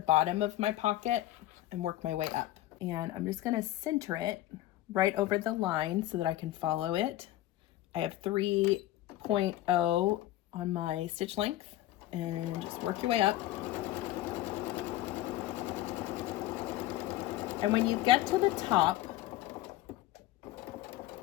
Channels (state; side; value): quieter; right; 15.2 dB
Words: of my pocket and work my way up. And I'm just going to center it right over the line so that I can follow it. I have 3.0 on my stitch length, and just work your way up. And when you get to the top,